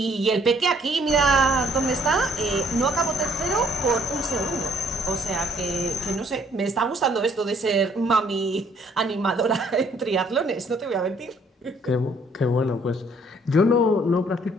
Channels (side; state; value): both; normal; correlation 0.63